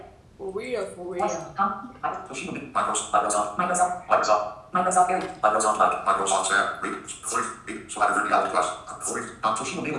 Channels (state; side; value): identical; both; correlation 1.00